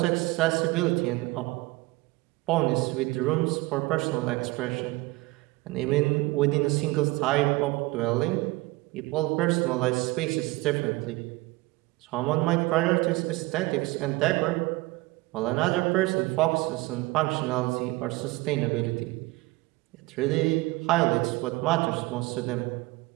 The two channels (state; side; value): quieter; left; 21.8 dB